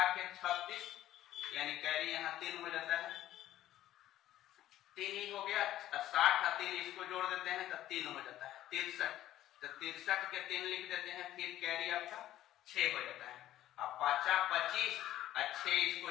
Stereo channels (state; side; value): quieter; right; 13.5 dB